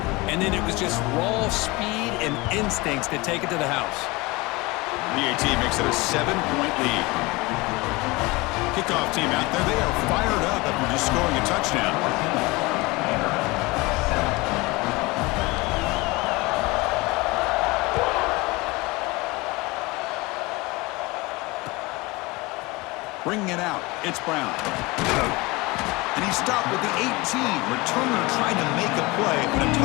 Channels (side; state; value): right; quieter; 23.5 dB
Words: And then it was just raw speed and instincts to take it to the house. PAT makes it a 7-point lead. Kickoff team out there. They are fired up after just scoring a touchdown. Bringing it out, it's Brown. And he stopped with the 18. Returner trying to make a play, but a